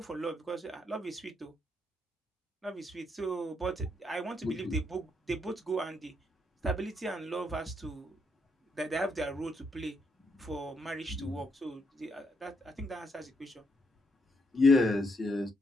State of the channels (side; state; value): both; normal; correlation 0.76